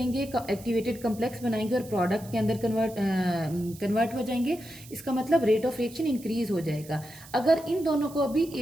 एक्टिवेटेड कॉम्प्लेक्स बनाएंगे और प्रोडक्ट के अंदर कन्वर्ट हो जाएंगे। इसका मतलब रेट ऑफ रिएक्शन इंक्रीज हो जाएगा। अगर इन दोनों को भी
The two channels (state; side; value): noise; right; hiss, 19 dB below the sound